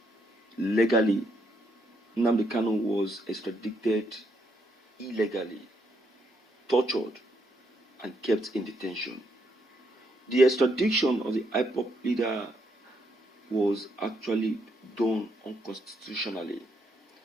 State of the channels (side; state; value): both; normal; correlation 0.76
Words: Legally, Nnamdi Kanu was extradited illegally, tortured, and kept in detention. The extradition of the IPOB leader was actually done unconstitutionally.